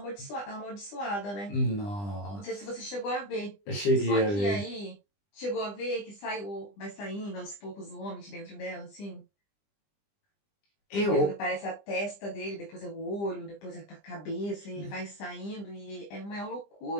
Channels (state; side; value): late; right; 20 ms